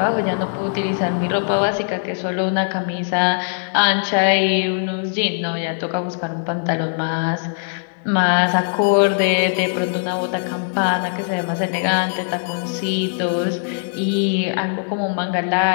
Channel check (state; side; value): silent; right; digital silence